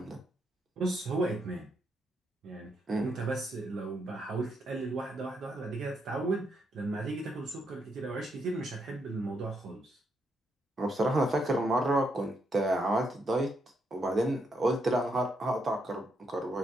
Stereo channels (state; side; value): normal; both; correlation 0.78